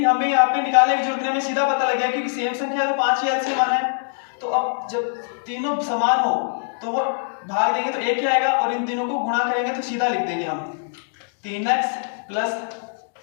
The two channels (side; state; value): right; silent; digital silence